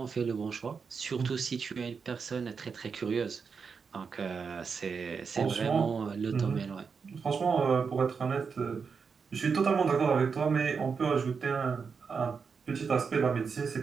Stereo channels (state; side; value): quieter; left; 5.6 dB